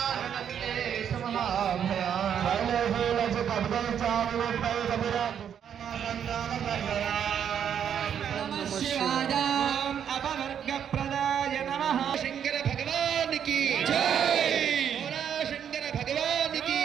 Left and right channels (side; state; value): left; quieter; 8.6 dB